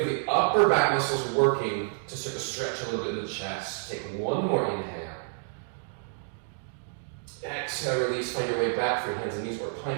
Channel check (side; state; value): left; silent; digital silence